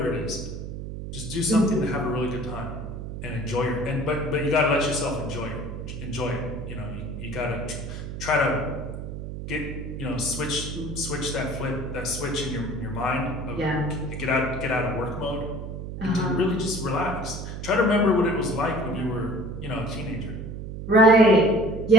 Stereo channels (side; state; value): right; noise; hum, 7 dB below the sound